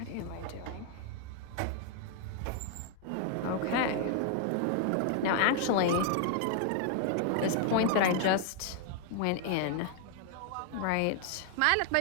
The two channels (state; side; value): different; both; correlation 0.00